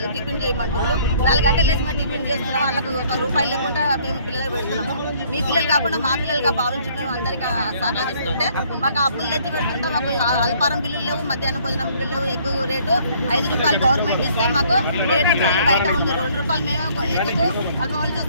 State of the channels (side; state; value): both; inverted; correlation -0.60